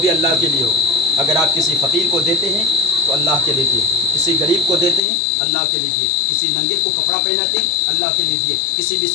अल्लाह के लिए हो। अगर आप किसी फ़कीर को देते हैं तो अल्लाह के लिए दिए, किसी गरीब को देते हैं अल्लाह के लिए दिए, किसी नंगे को कपड़ा पहनाते हैं अल्लाह के लिए दिए, किसी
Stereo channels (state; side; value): drops out; right; at 5.0 s